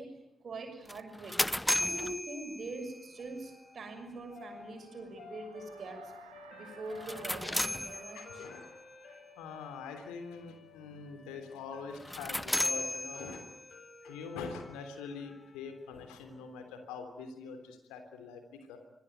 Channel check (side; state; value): both; normal; correlation 0.90